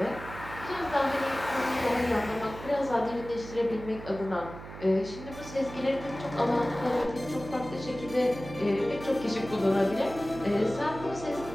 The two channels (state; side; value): noise; right; hum, 13 dB below the sound